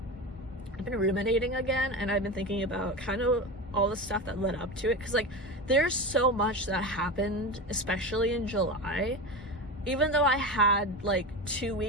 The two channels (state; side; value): normal; both; correlation 0.24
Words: I've been ruminating again, and I've been thinking about kind of all the stuff that led up to it, because like there's so much that happened, especially in July. Even though I had like 2